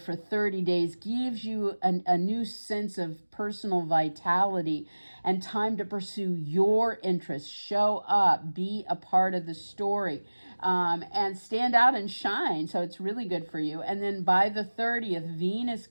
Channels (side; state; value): both; inverted; correlation -1.00